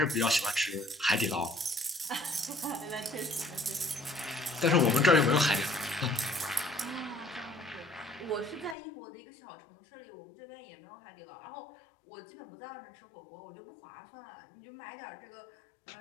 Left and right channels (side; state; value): right; drops out; at 8.8 s